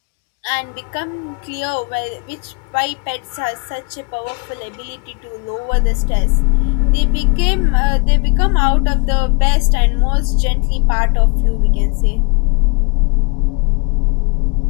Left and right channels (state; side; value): quieter; right; 32.6 dB